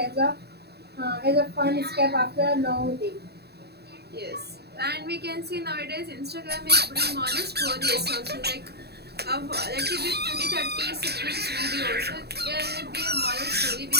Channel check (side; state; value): left; late; 0.47 ms